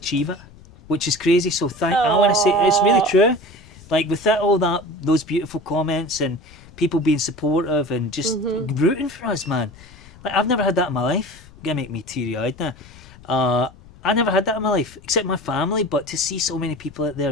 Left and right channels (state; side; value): noise; left; rumble, 22 dB below the sound